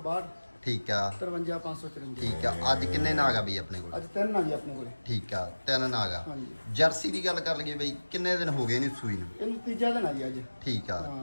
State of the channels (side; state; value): both; inverted; correlation -1.00